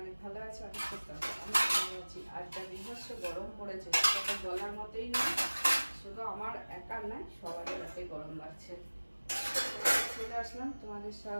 অনেক ভালো আছো, অনেক সুস্থ আছো। আমি ভালো আছি। আর যা বিভৎস গরম পড়েছে সেটা তো বলার মতোই নয়, শুধু আমার একার নয়, সবারই রাতে গরম লাগছে। চলে আসলাম তোমাদের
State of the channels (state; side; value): inverted; both; correlation -1.00